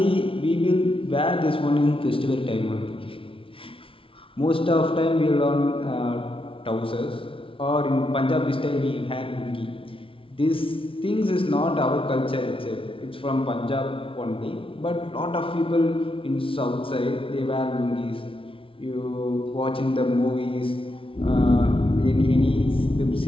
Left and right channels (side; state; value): right; late; 0.26 ms